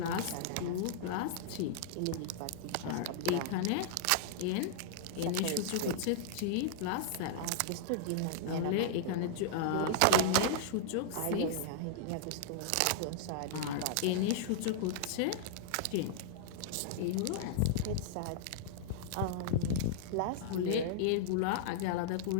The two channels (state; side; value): different; both; correlation -0.01